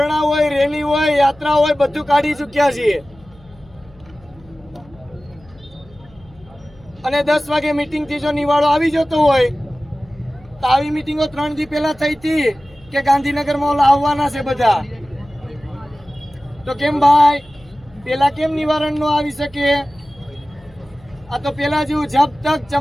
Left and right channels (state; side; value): noise; left; hum, 26 dB below the sound